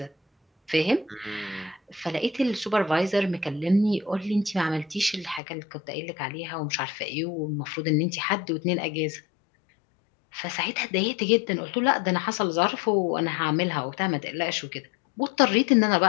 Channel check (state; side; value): drops out; right; at 5.4 s